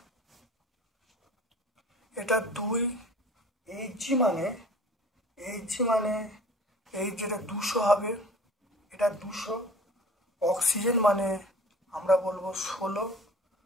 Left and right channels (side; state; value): both; normal; correlation 0.46